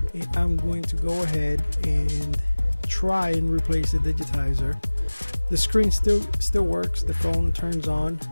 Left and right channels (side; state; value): both; inverted; correlation -1.00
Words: and I'm going to go ahead and try and replace the digitizer. The screen still works, the phone turns on,